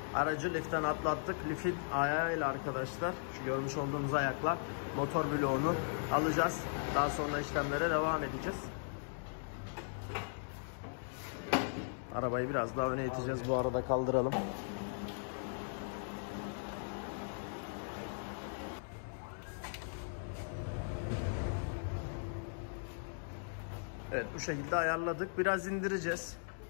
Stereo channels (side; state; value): right; silent; digital silence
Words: Aracı liften atlattık. Lifin ayağıyla arkadaşlar, şu görmüş olduğunuz ayaklar, motor bloğunu alacağız. Daha sonra işlemlere devam edeceğiz. Arabayı biraz daha öne iteceğiz. Bu arada kaldıralım. Evet, bu şekilde ayarladık. Biraz indireceğiz.